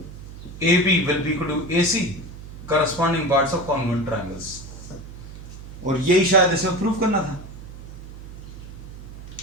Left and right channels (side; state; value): right; noise; hum, 13 dB below the sound